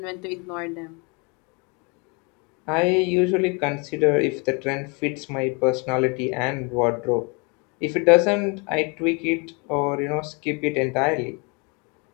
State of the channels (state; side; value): quieter; right; 32.0 dB